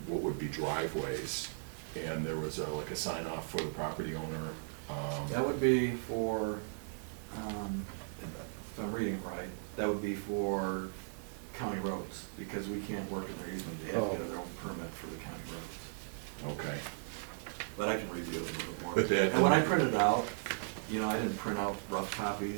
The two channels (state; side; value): silent; left; digital silence